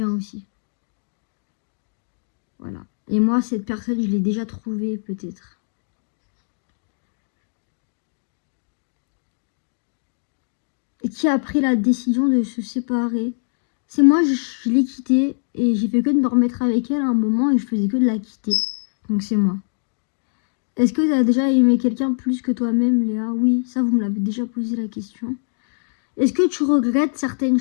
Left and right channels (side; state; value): right; silent; digital silence